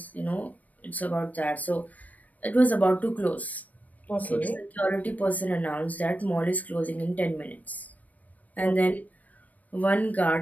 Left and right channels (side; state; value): right; late; 0.074 ms